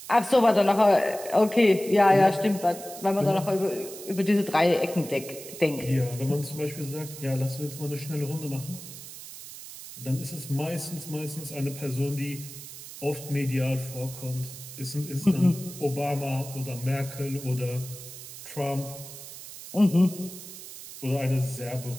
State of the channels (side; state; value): right; noise; hiss, 13 dB below the sound